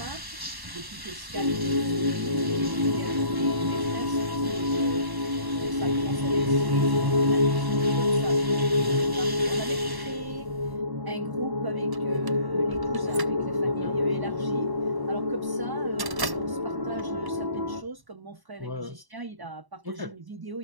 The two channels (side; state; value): left; late; 1.1 ms